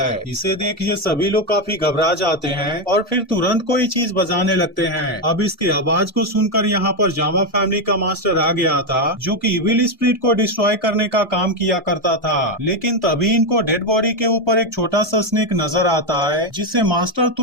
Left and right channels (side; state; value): both; normal; correlation 0.07